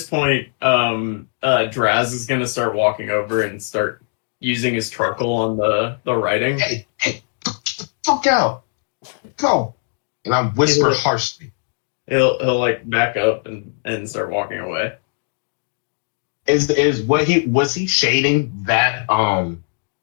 point, Draz is gonna start walking over and start using his charcoal on the writing. Hey, get the fuck out. Go. And I whisper Yeah. harshly. He'll like back up and start walking away. Is what was he shading that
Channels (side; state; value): right; silent; 65 dB below the other